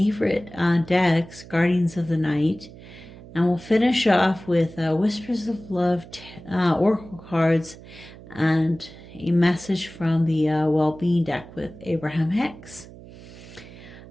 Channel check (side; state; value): right; noise; hum, 18 dB below the sound